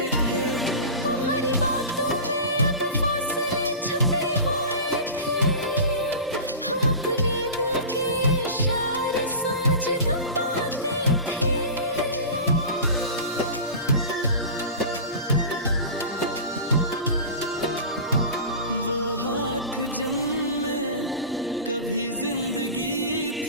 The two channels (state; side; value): inverted; both; correlation -0.32